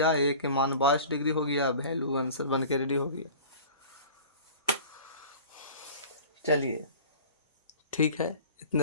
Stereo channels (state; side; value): inverted; both; correlation -0.41